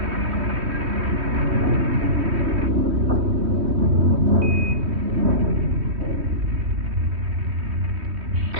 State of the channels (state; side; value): late; left; 3.2 ms